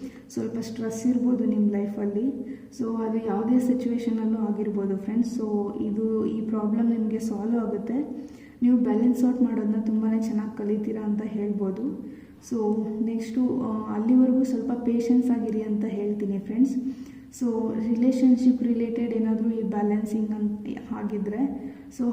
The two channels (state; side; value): identical; both; correlation 1.00